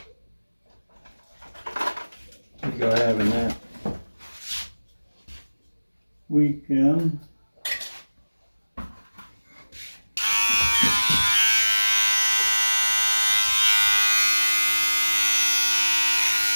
go having that. we can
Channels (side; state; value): both; inverted; correlation -1.00